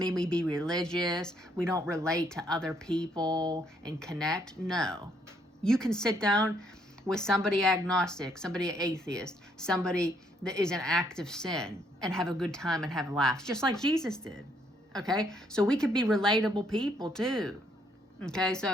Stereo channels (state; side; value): normal; both; correlation 0.70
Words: we be religious? We don't relate to other people and connect? No. You can sit down with somebody agnostic, somebody atheist, somebody that is in active sin and have a good time and have laughs, just like Jesus did. Okay? So we could be relatable people too. Okay?